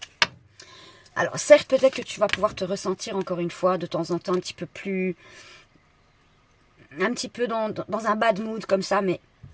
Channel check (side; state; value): both; identical; correlation 1.00